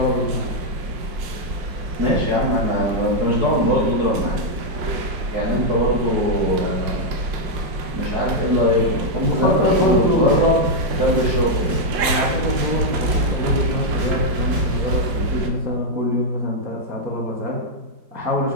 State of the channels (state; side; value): late; left; 5.6 ms